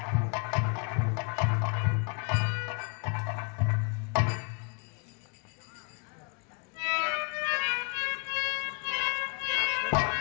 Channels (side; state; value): right; quieter; 34.8 dB